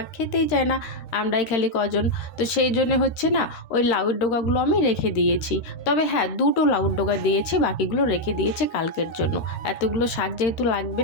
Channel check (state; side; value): late; right; 13 ms